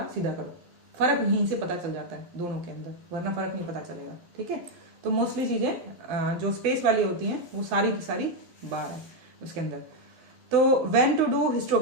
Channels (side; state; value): left; late; 12 ms